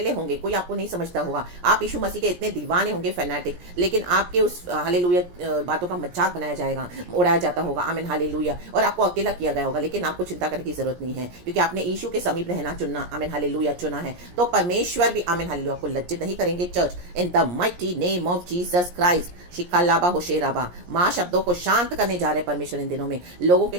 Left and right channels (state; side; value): late; left; 17 ms